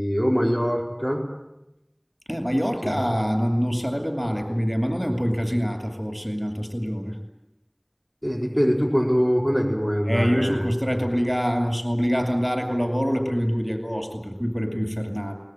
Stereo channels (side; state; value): both; identical; correlation 1.00